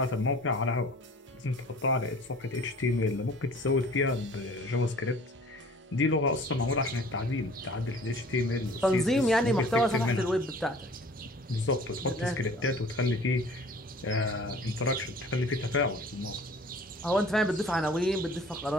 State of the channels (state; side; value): normal; both; correlation 0.48